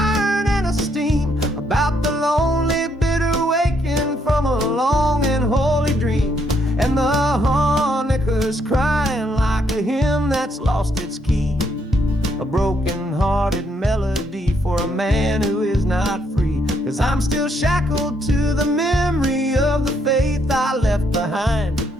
and of steam, about the lonely, bitter waking from a long and holy dream. And the harmonica's crying like a hymn that's lost its key, a broken-hearted melody for a man who is not free. 'Cause I'm still shackled to the memory of the faith I left behind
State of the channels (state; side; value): normal; both; correlation 0.73